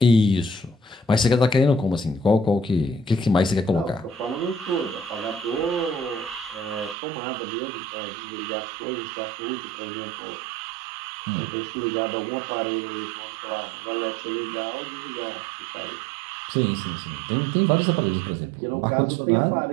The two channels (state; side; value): drops out; left; at 7.0 s